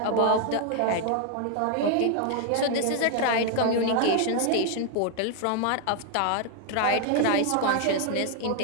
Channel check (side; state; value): both; different; correlation 0.00